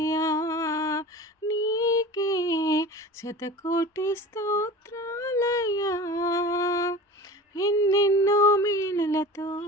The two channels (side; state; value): both; normal; correlation 0.37